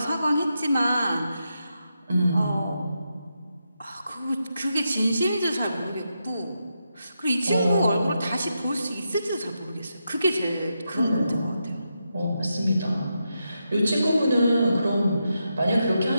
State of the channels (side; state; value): both; inverted; correlation -0.85